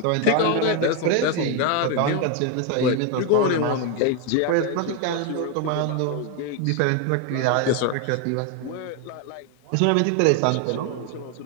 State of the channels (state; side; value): different; both; correlation 0.01